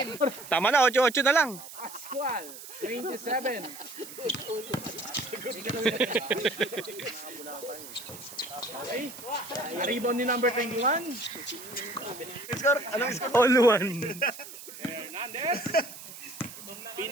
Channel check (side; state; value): right; noise; hiss, 14 dB below the sound